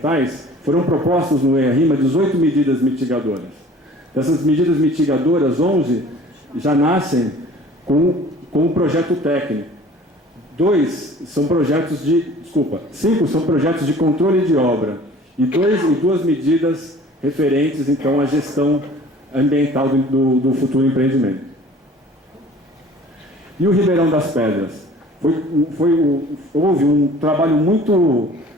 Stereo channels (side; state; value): both; normal; correlation 0.48